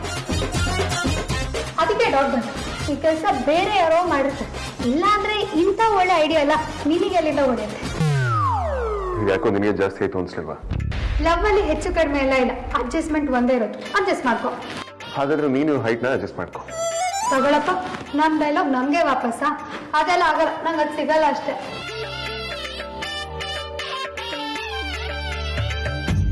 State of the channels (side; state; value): both; identical; correlation 1.00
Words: ಅದಕ್ಕೆ ಡೌಟ್ ಬಂತು, ಈ ಕೆಲಸ ಬೇರೆ ಯಾರೋ ಮಾಡಿರ್ತಾರೆ. ಇಲ್ಲ ಅಂದ್ರೆ ಇಂಥ ಒಳ್ಳೆ ಐಡಿಯಾ ಎಲ್ಲ ನಿನಗೆ ಎಲ್ಲಿಂದ ಹೊಡೆಯುತ್ತೆ? ಯಾಕೋ ನಿನಗೆ ಜಾಸ್ತಿ ಆಯ್ತು ಅನ್ಸಲ್ವಾ? ಲವ್ ಅಲ್ಲಿ ಹೆಚ್ಚು ಕಡಿಮೆ ಎಲ್ಲ ಇಲ್ಲ, ಅಡ್ಜಸ್ಟ್ಮೆಂಟ್ ಒಂದೇ ಇರೋದು. ಅಡ್ಜಸ್ಟ್ ಮಾಡ್ಕೊ. ಹಾಗಾದ್ರೆ ನೀನು ಹೈಟ್ನ ಅಡ್ಜಸ್ಟ್ ಮಾಡ್ಕೊ. ತಗೊಳಪ್ಪ, ನಮ್ ಡೈಲಾಗ್ ನಮ್ಗೆ ವಾಪಸ್ಸ? ಅದೆಲ್ಲ ಆಗಲ್ಲ, ನಂಗೆ ಅದು ಸಿಗಲ್ಲ ಅಷ್ಟೇ.